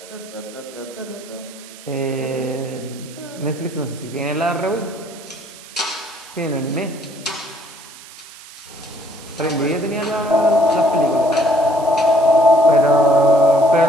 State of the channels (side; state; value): right; noise; hiss, 18 dB below the sound